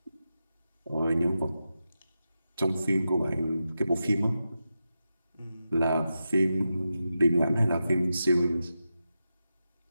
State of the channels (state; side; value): inverted; both; correlation -0.90